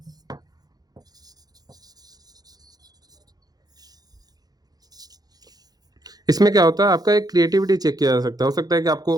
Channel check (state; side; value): late; left; 0.19 ms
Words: इसमें क्या होता है, आपका एक क्रिएटिविटी चेक किया जा सकता है। हो सकता है कि आपको